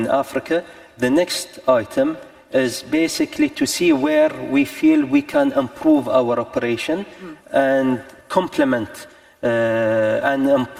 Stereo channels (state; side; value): identical; both; correlation 1.00